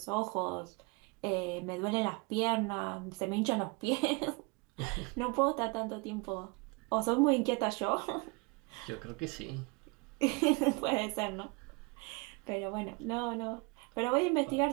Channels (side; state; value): left; quieter; 28.8 dB